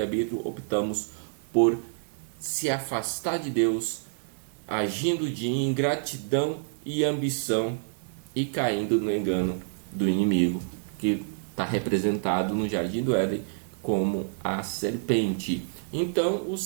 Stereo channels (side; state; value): left; silent; 59 dB below the other